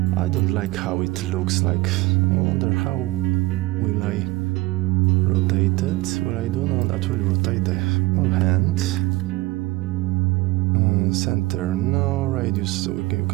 I don't like how it looks like. I wonder how will I rotate it? Well, I do know that will rotate the whole hand. Center, no. Radius, so you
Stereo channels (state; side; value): quieter; left; 19.7 dB